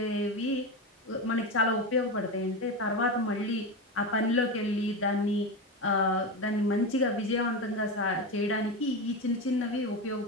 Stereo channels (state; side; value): normal; both; correlation 0.18